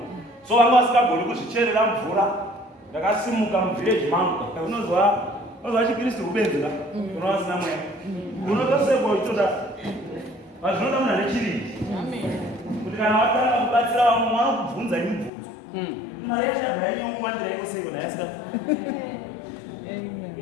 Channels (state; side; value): drops out; right; at 15.3 s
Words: So vanga vasingagoni kuzvicherera mvura. Ndakasimuka muvillage mangu. Unozwa chiKristu kubenzera. Unowa vasina mweya. Unotosekwa ichoda. Zvinoda munhu ane chirindi. Kuti kana watanga kubatsira vamwe vanokubvunza mibvunzo. Mari yachabva yanyongwandira iko seiko ndayasika.